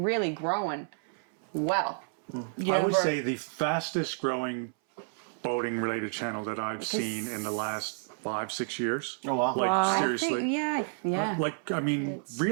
grown well. I would say the fastest growing boating related channel that I've seen in the last 5-6 years. Oh, wow. Like, I seriously. think, yeah. Like, I mean,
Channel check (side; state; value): left; silent; 58 dB below the other